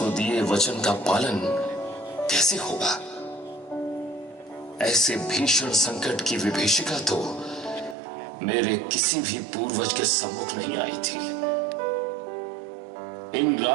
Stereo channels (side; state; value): left; drops out; at 8.0 s